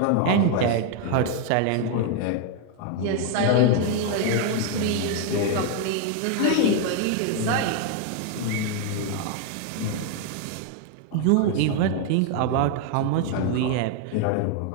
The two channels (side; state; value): both; different; correlation 0.00